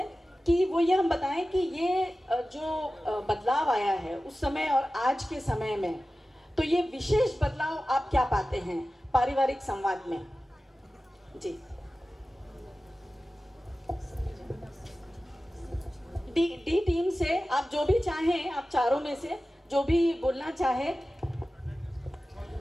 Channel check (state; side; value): normal; both; correlation 0.95